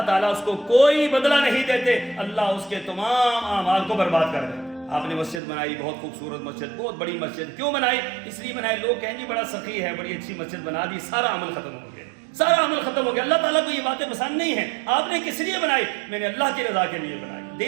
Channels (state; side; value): drops out; left; at 5.4 s